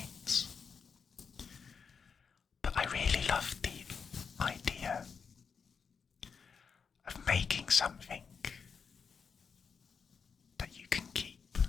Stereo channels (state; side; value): quieter; right; 6.0 dB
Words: but I really love the idea of making something that you can keep